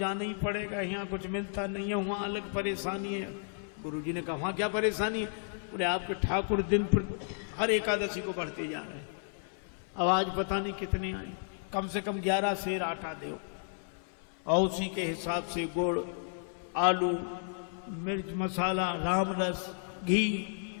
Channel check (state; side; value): silent; right; 56 dB below the other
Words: ही पड़ेगा, यहाँ कुछ मिलता नहीं है, वहाँ अलग परेशानी है। गुरु जी ने कहा वहाँ क्या परेशानी है? बोले आपके ठाकुर दिन पर हर एकादशी को बढ़ते जा रहे हैं, अब आज पता नहीं कितने आए, कम से कम 11 सेर आटा दो, और उसी के हिसाब से गुड़, आलू, मिर्च मसाला, राम रस, घी।